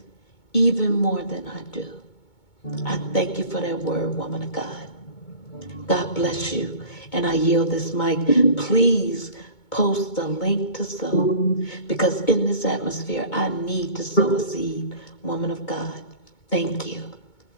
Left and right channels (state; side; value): late; right; 2.2 ms